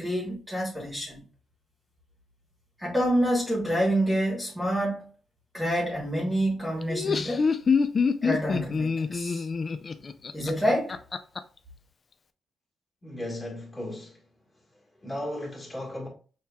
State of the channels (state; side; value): normal; both; correlation 0.88